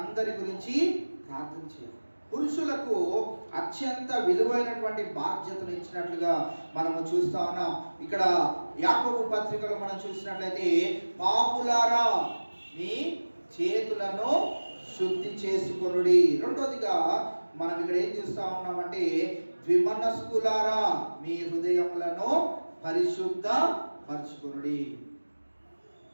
గురించి ప్రార్థన చేయాలి. పురుషులకు అత్యంత విలువైనటువంటి బాధ్యతను ఇచ్చినట్లుగా మనము చూస్తా ఉన్నాం. ఇక్కడ యాకోబు పత్రికలో మనం చూసినట్లయితే, పాపులారా, మీ చేతులను శుద్ధి చేసుకొనుడి. రెండోదిగా మనం ఇక్కడ ఏం చూస్తా ఉన్నామంటే, ద్విమనస్కులారా, మీ హృదయములను పరిశుద్ధ పరచుకొనుడి.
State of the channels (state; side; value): inverted; both; correlation -1.00